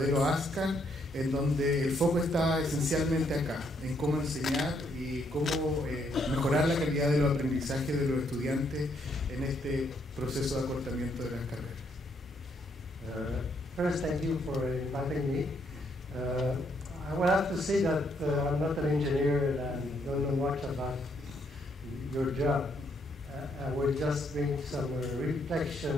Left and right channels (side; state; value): both; normal; correlation 0.73